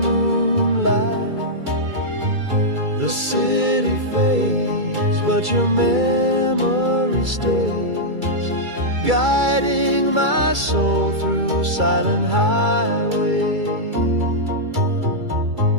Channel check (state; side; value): late; left; 2.3 ms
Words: The city fades, but your memory stays, guiding my soul through silent highway.